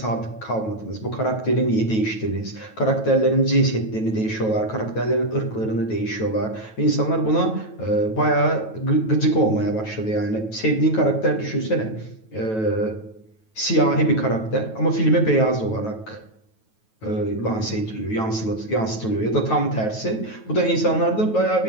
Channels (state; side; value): late; right; 9.2 ms